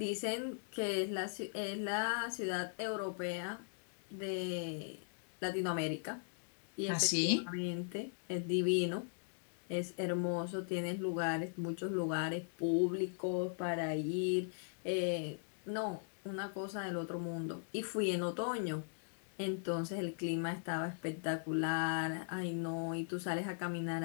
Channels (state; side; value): silent; right; digital silence